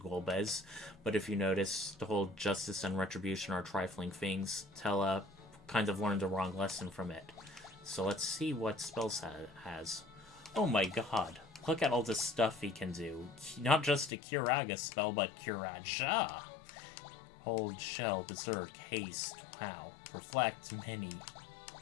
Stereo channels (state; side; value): drops out; right; at 14.1 s